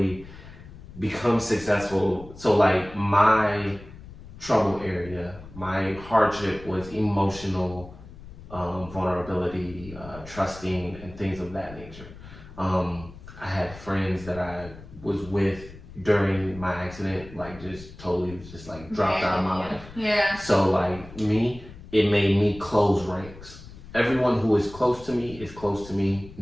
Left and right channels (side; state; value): left; noise; rumble, 17 dB below the sound